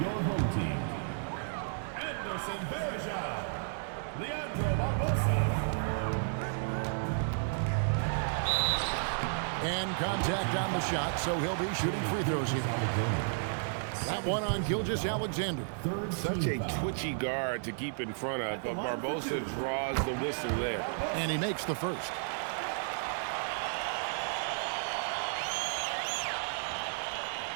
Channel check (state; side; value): silent; left; 56 dB below the other